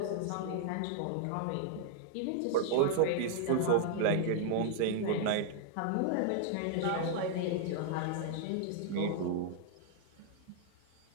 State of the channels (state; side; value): different; both; correlation -0.01